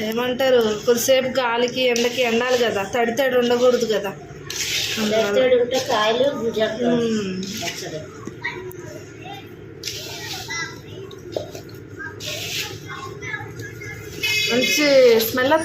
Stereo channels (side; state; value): both; identical; correlation 1.00